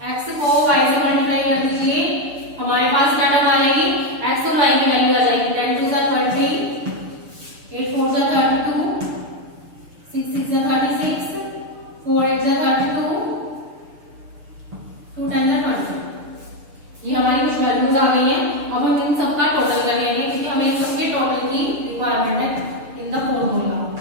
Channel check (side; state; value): left; late; 6.7 ms